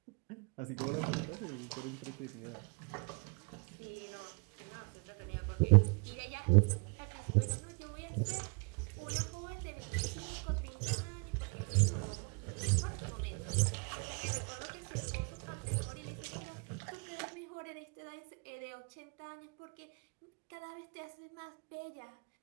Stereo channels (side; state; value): left; quieter; 34.1 dB